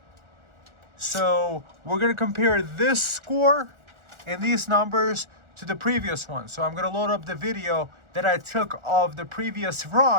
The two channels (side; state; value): left; late; 1.4 ms